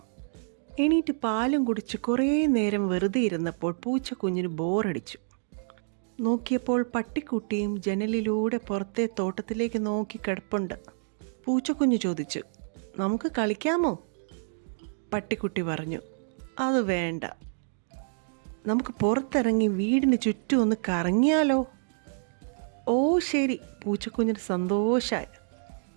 എണീറ്റ് പാലും കുടിച്ച് കുറേ നേരം വെറുതെ ഇരുന്നപ്പോൾ പൂച്ചക്കുഞ്ഞിന് ബോറടിച്ചു. നോക്കിയപ്പോൾ പട്ടിക്കുട്ടിയും ജനലിലൂടെ പുറത്തെ തോട്ടത്തിലേക്ക് നോക്കി കിടപ്പുണ്ട്. പൂച്ചക്കുഞ്ഞ് ചോദിച്ചു, നമുക്ക് കളിക്കാമോ? പട്ടിക്കുട്ടി പറഞ്ഞു, അത് വേണ്ട, നമുക്ക് പുറത്തിറങ്ങി വീടിന് ചുറ്റും ഒന്ന് കറങ്ങിയാലോ? ഓ ശരി, പൂച്ചക്കുഞ്ഞിന് സന്തോഷമായി.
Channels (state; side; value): silent; left; digital silence